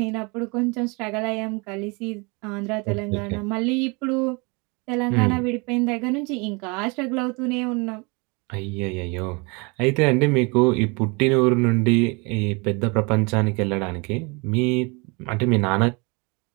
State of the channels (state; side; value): quieter; left; 29.4 dB